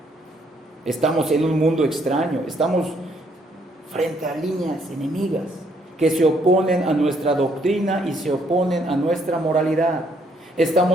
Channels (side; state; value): both; normal; correlation 0.69